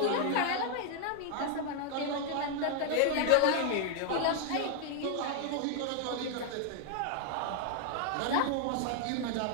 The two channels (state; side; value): different; both; correlation 0.00